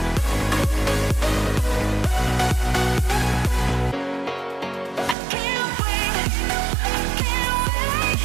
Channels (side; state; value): left; drops out; at 5.2 s